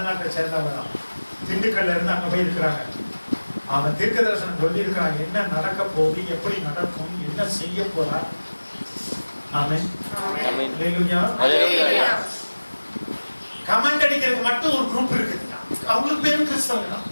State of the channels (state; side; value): inverted; both; correlation -1.00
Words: சேர்ந்தவன், திண்டுக்கல்ல இருந்து அங்க போய் இருக்கிறாங்க. அவன் தீர்க்க தரிசனம் சொல்லி இருக்கிறான். என்ன நடக்க போகுது, எப்படி நடக்கும், என்ன செய்ய போறா. ஆமென். கமெண்ட் அடிக்கிறதுக்கு மட்டும் ஒரு குரூப் இருக்குது. அவங்களுக்கு பேரும் கிறிஸ்தவங்க தான்.